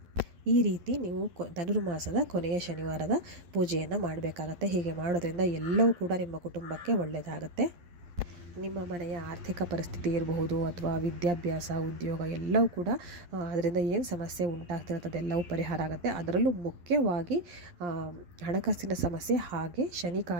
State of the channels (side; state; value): left; late; 11 ms